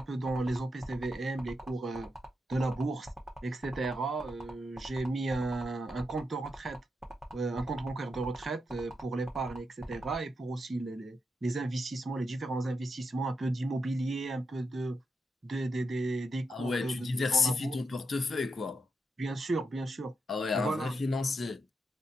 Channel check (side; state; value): both; normal; correlation 0.85